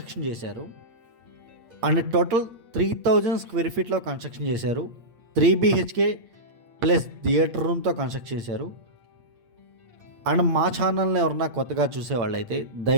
చేశారు. అండ్ టోటల్ 3000 స్క్వేర్ ఫీట్లో కన్స్ట్రక్షన్ చేశారు. 3 BHK ప్లస్ థియేటర్ రూమ్తో కన్స్ట్రక్ట్ చేశారు. అండ్ మా ఛానల్ని ఎవరన్నా కొత్తగా చూసేవాళ్ళైతే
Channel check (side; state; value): left; late; 8.7 ms